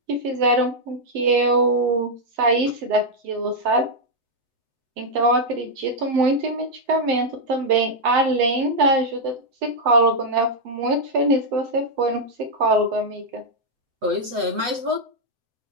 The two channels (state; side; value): late; left; 8.0 ms